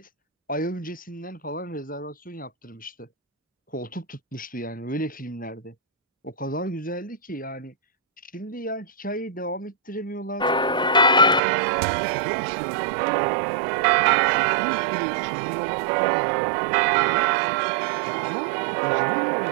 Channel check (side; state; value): left; drops out; at 11.4 s